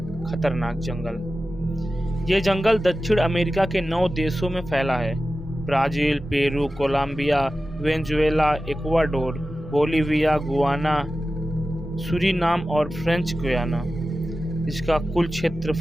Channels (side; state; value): both; normal; correlation 0.94